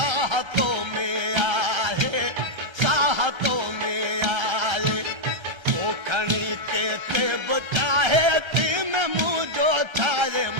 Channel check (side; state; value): left; late; 1.3 ms